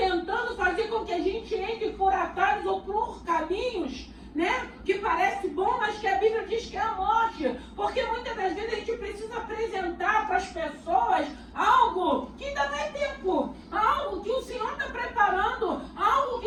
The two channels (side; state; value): both; identical; correlation 1.00